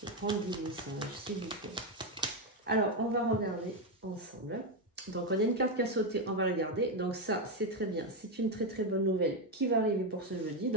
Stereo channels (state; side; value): normal; both; correlation 0.07